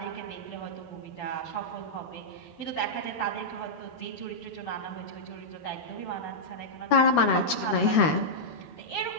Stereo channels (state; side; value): late; right; 13 ms